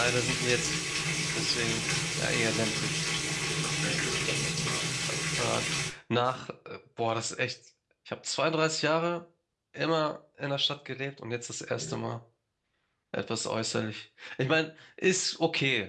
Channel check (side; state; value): both; identical; correlation 1.00